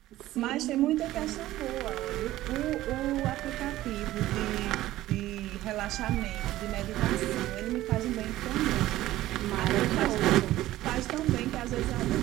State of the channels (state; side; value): quieter; left; 15.4 dB